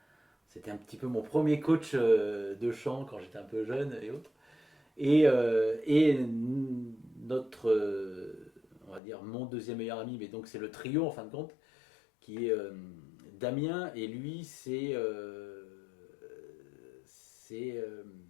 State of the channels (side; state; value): right; drops out; at 9.0 s